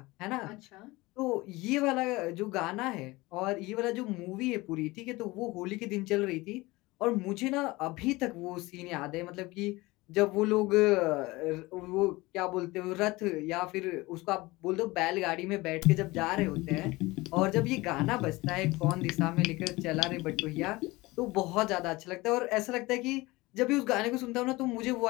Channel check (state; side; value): quieter; right; 21.4 dB